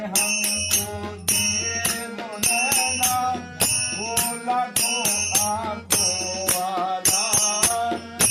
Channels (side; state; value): both; identical; correlation 1.00